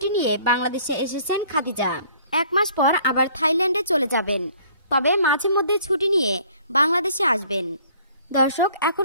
নিয়ে বাংলাদেশে এসেছেন খাদিজা। 1 মাস পর আবার থাইল্যান্ডে চলে যাবেন, তবে মাঝে মধ্যে ছুটি নিয়ে বাংলাদেশে আসবেন। দর্শক,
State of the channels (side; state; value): both; inverted; correlation -0.57